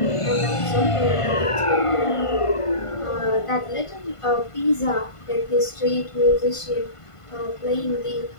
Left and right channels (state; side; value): late; right; 1.5 ms